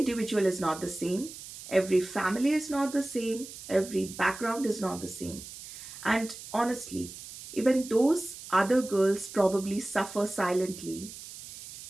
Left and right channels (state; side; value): noise; right; hiss, 14 dB below the sound